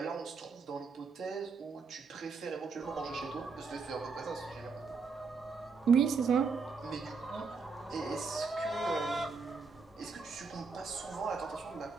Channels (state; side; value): quieter; left; 4.8 dB